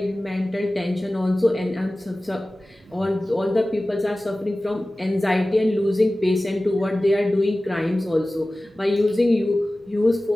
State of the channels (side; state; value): both; normal; correlation 0.97